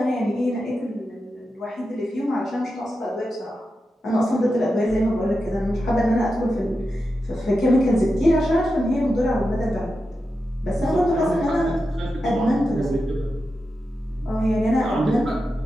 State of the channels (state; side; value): normal; both; correlation 0.90